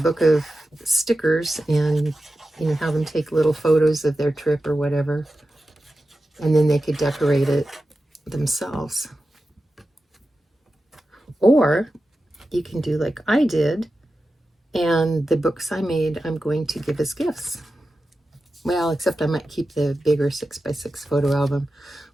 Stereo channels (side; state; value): both; normal; correlation 0.92